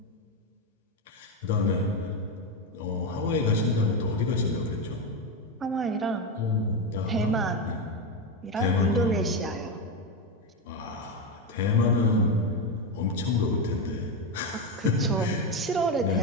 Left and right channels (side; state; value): both; normal; correlation 0.11